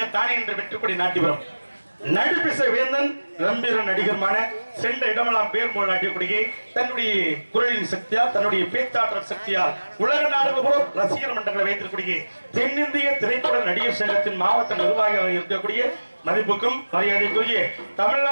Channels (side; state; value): both; inverted; correlation -1.00